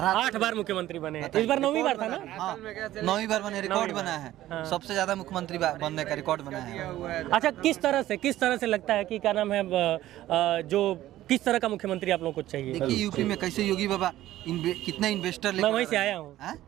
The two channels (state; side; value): quieter; left; 14.4 dB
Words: 8 बार मुख्यमंत्री बने, इस बार 9वीं बार था ना? हाँ, 9वीं बार बने, रिकॉर्ड बना है। सबसे ज्यादा मुख्यमंत्री बनने का रिकॉर्ड बना है। अच्छा, किस तरह से लगता है कि क्या नाम है, जो किस तरह का मुख्यमंत्री आप लोगों को चाहिए? देखिए, यूपी में कैसे योगी बाबा कितने इन्वेस्टर मैं वहीं से आया हूँ।